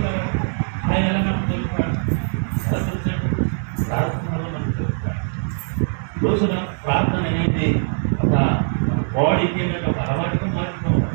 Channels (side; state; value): left; silent; digital silence